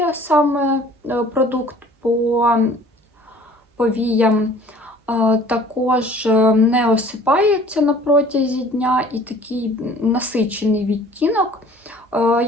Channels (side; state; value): both; normal; correlation 0.50